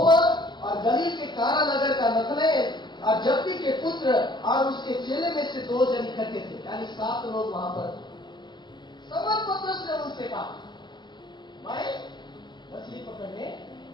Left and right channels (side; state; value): right; late; 0.22 ms